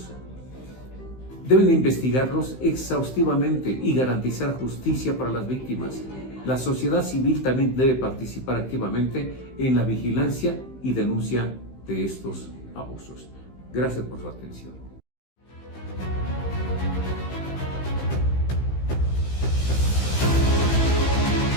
Deben investigarlos exhaustivamente y garantizar justicia para las víctimas. La sociedad civil también debe participar activamente en la vigilancia y denuncia de estos abusos. Gracias por su atención.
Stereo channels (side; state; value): right; late; 15 ms